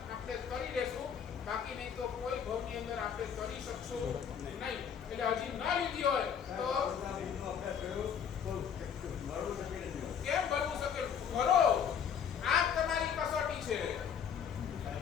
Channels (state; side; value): quieter; right; 7.7 dB